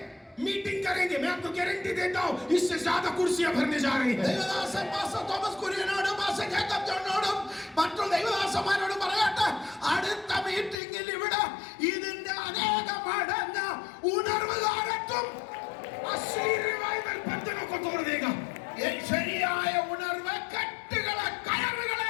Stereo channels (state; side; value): drops out; right; at 10.8 s